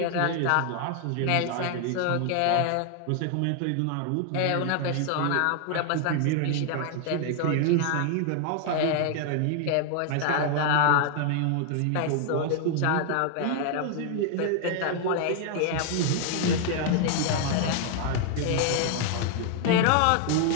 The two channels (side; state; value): both; different; correlation 0.00